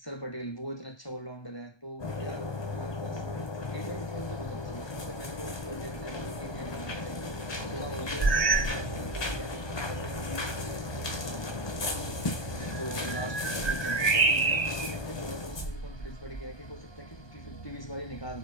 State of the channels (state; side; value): late; right; 1.2 ms